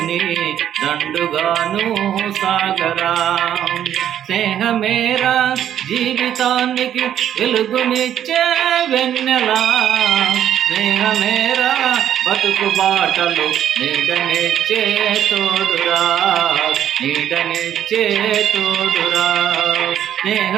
దండుగాను సాగరా. స్నేహమేరా జీవితానికి వెలుగునిచ్చే వెన్నెలా, స్నేహమేరా బతుకు బాటలు నీడనిచ్చే తోడురా, నీడనిచ్చే తోడురా.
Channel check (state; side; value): quieter; left; 10.4 dB